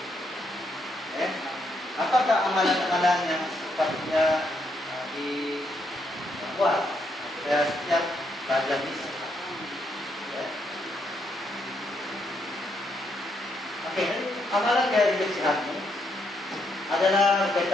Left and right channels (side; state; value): both; normal; correlation 0.77